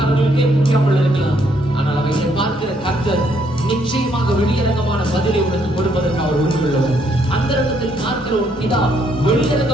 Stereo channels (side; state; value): both; normal; correlation 0.71